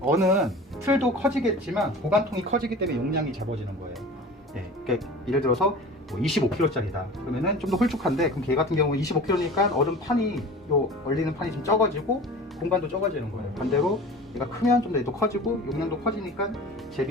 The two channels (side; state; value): both; normal; correlation 0.38